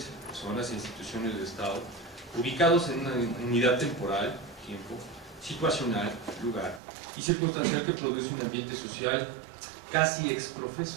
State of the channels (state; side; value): drops out; left; at 6.8 s